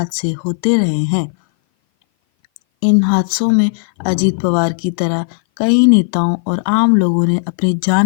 होते रहे हैं। इन हादसों में अजीत पवार की तरह कई नेताओं और आम लोगों ने अपनी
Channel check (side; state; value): right; silent; 58 dB below the other